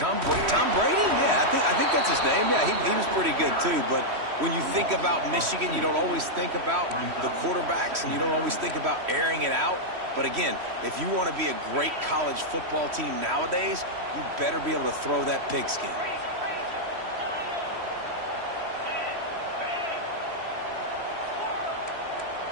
Brady? Yeah, I think that's his name. Yeah, he was pretty good, too. But when you think about Michigan, you don't always think about the quarterbacks, and you don't always think about airing it out. But again, if you want to be a great college football team nowadays, you better be able to throw that pigskin.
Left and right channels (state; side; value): late; left; 3.1 ms